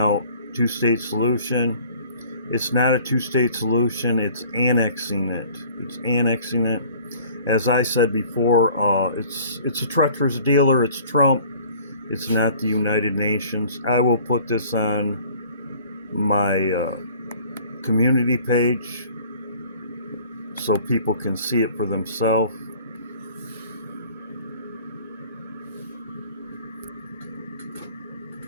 two-state solution. It's not a two-state solution. It's annexing it. As I said before, it's a treacherous dealer. It's Trump. It's not the United Nations. I will put this on my community page so people can see it for themselves.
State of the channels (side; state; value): both; inverted; correlation -0.52